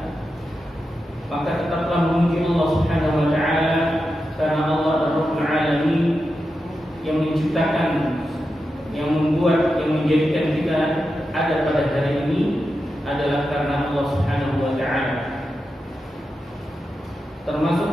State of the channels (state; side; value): normal; both; correlation 0.89